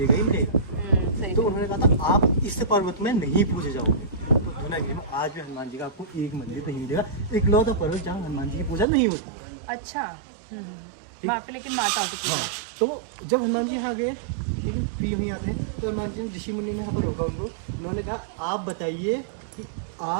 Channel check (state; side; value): drops out; left; at 8.8 s